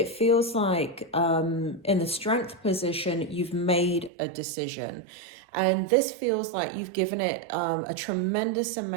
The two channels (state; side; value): drops out; left; at 4.1 s